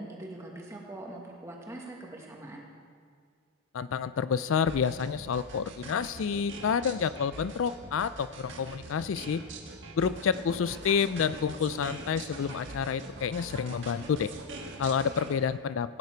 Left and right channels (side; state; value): right; quieter; 5.9 dB